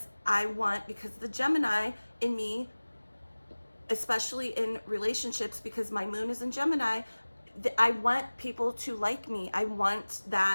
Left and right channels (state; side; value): inverted; both; correlation -1.00